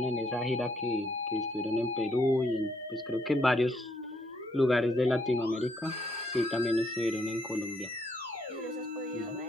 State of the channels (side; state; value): both; normal; correlation 0.72